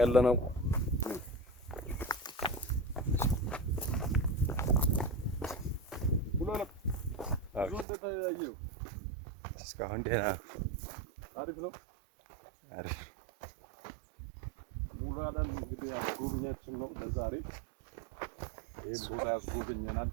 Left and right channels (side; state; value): left; drops out; at 7.9 s